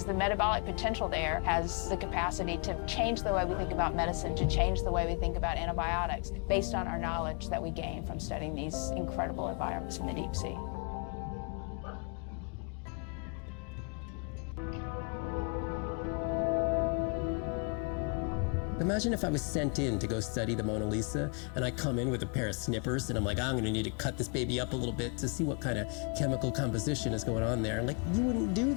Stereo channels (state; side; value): quieter; right; 37.3 dB